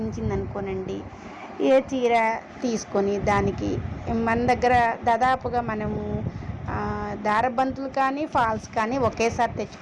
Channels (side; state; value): both; identical; correlation 1.00